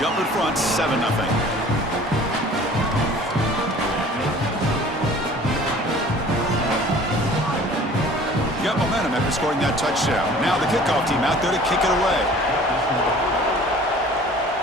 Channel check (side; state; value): both; normal; correlation 0.48